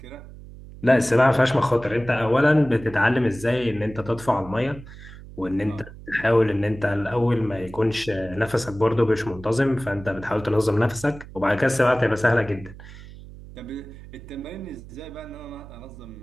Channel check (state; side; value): noise; right; hum, 16 dB below the sound